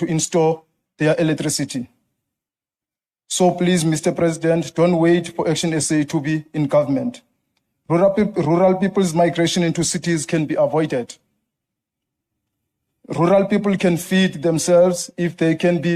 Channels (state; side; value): identical; both; correlation 1.00